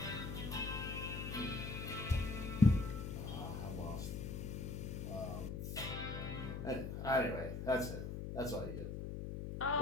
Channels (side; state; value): left; noise; hum, 5 dB below the sound